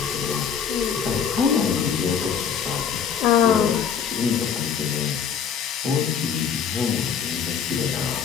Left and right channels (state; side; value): quieter; right; 7.4 dB